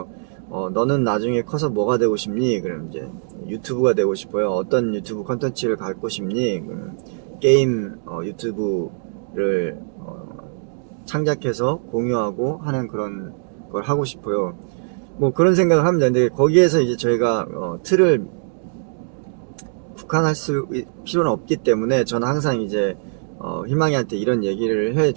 너는 나중에 커서 뭐가 되고 싶니? 그럼 이제 유튜브가 되고 싶어요. 어떤 유튜브 컨텐츠를 갖고 싶니? 게임 유튜브를 창작해서 공유하고 하는 그런 걸 하고 싶어요. 뭐 그런 생각을 합니다. 근데 거기에서 이제 저희가 틀을 국한할 필요는 없기 때문에 저는 항상 이제 희망이한테 이런 얘기를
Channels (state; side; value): silent; left; 65 dB below the other